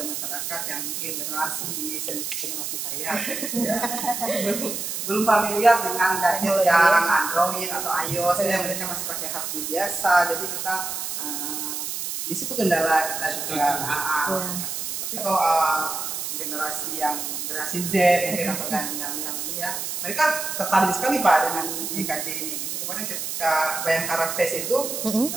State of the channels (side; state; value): right; noise; hiss, 4 dB below the sound